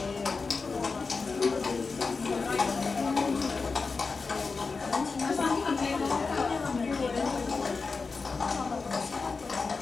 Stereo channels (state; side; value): quieter; right; 4.4 dB